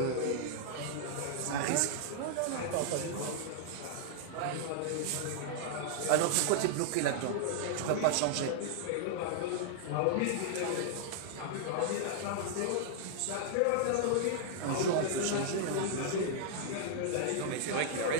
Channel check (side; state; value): both; different; correlation -0.01